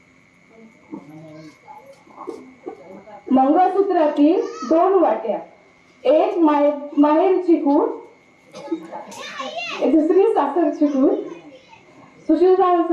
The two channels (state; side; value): identical; both; correlation 1.00